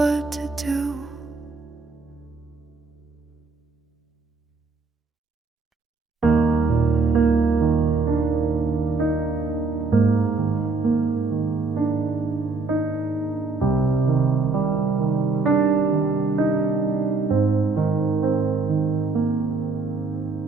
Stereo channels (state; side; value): quieter; left; 3.8 dB